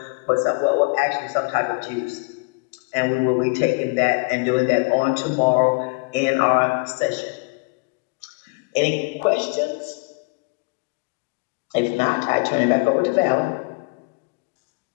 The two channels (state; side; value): quieter; right; 32.3 dB